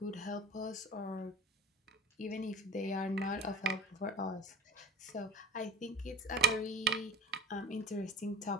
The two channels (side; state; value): both; normal; correlation 0.38